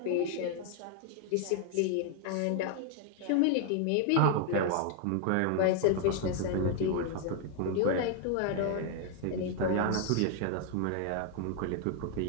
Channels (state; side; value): different; both; correlation 0.00